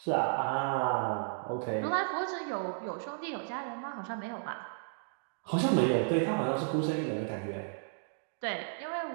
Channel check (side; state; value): left; silent; digital silence